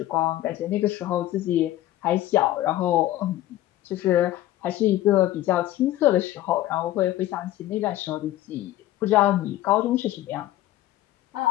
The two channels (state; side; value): quieter; right; 14.6 dB